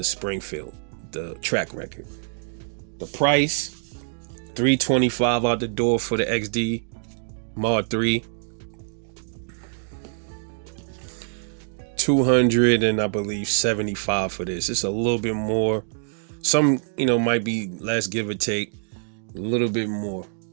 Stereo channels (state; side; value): silent; left; digital silence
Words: Springfield, the track record. The price, $325 out the door for the XD Mod 3. 200 and I believe 75 for this. It's a little bit more. Some, might be less, give or take. A little bit more.